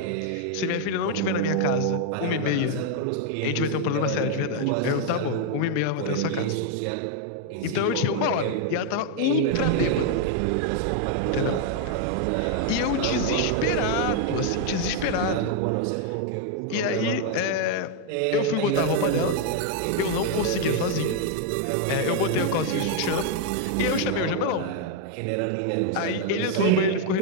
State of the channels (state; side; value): different; both; correlation 0.00